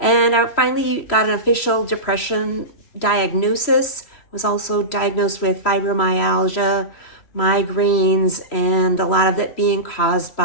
I finally got an official depression diagnosis. Was also diagnosed with fibromyalgia, migraines, and a lot of it being caused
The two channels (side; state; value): right; late; 3.0 ms